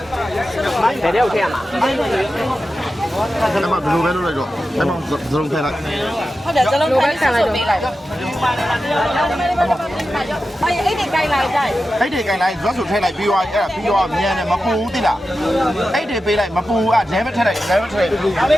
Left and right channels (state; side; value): normal; both; correlation 0.92